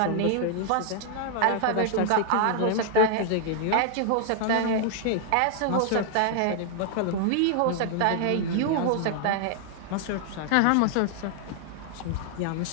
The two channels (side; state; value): both; different; correlation -0.01